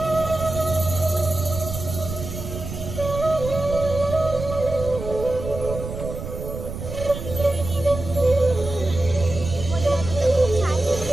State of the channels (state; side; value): noise; right; rumble, 8 dB below the sound